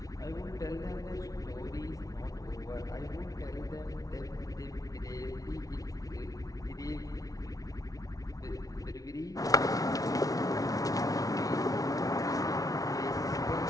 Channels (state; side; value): late; right; 0.18 ms